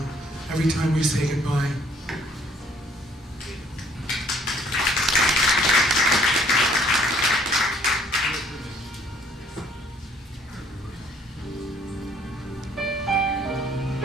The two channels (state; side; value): normal; both; correlation 0.61